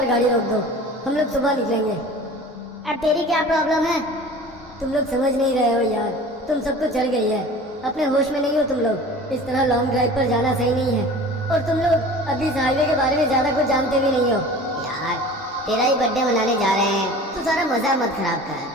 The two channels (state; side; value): normal; both; correlation 0.41